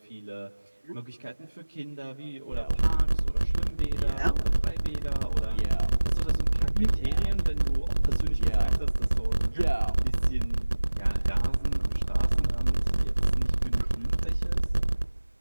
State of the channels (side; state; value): both; inverted; correlation -1.00